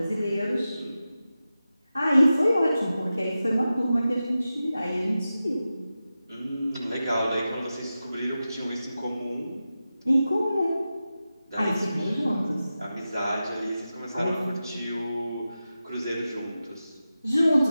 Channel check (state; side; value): inverted; both; correlation -0.93